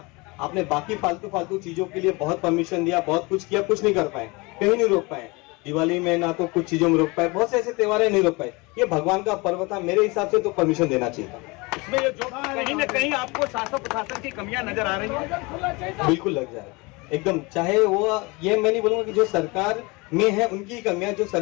आपने बाकी फालतू चीजों के लिए बहुत परमिशन दिया, बहुत कुछ किया, कुछ नहीं कर पाए, कहीं नहीं रोक पाए। दिवाली में ना तो कुछ चीजों में रोक पाए, बहुत से ऐसे त्योहार नहीं रोक पाए। ये भगवान का पर्व था, मेरे हिसाब से तो परमिशन देना चाहिए था। इसमें ये जो कहीं न कहीं आपको शासन प्रशासन की कमियां नजर आ रही है, बिल्कुल लग जाए एकदम। चाहे वो, ये मैं नहीं बोलूंगा कि जो सरकार में है उनकी कमियां, जो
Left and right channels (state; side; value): quieter; right; 26.0 dB